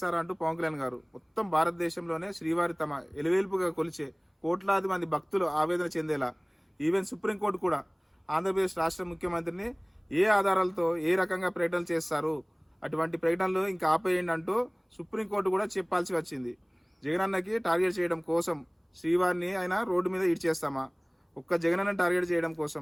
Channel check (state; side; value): identical; both; correlation 1.00